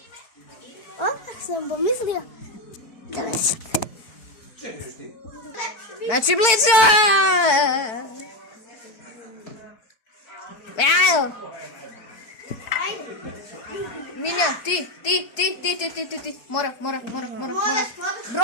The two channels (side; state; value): right; late; 4.4 ms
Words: Odmah sam pomislio da me sad. Znači blizu! Evo! Milja, ti. Mora.